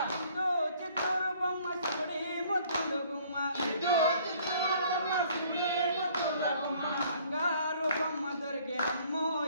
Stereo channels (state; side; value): inverted; both; correlation -0.58